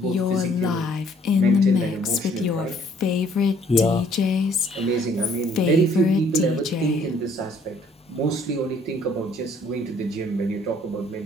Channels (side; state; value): both; normal; correlation 0.61